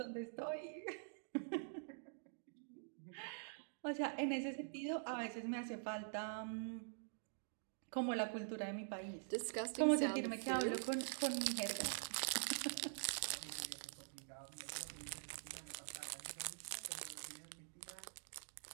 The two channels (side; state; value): left; silent; digital silence